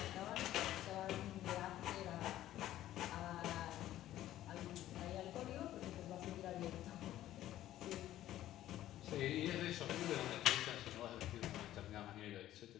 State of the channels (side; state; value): right; quieter; 13.5 dB